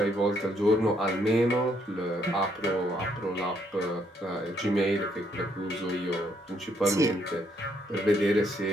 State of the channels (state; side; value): normal; both; correlation 0.71